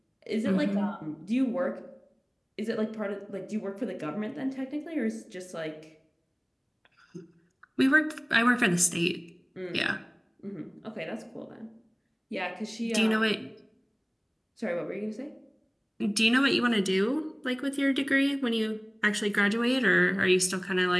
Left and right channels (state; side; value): identical; both; correlation 1.00